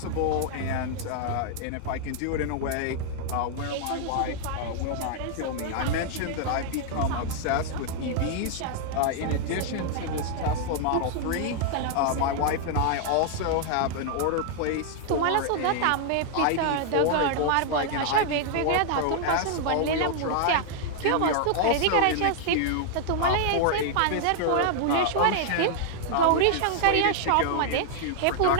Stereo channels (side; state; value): both; different; correlation -0.01